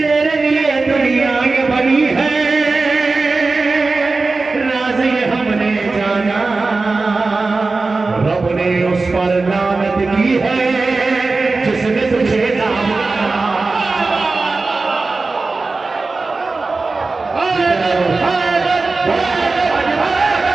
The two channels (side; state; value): left; quieter; 3.7 dB